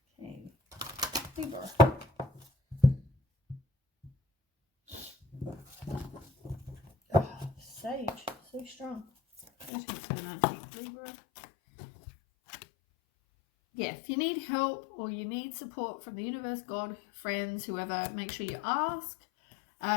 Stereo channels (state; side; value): drops out; right; at 9.7 s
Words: Okay. Libra. Oh, Sage. So strong. 13th to the 19th, Libra. Yeah, if you need help or you need support from the universe, God, friends, whoever, make sure you ask.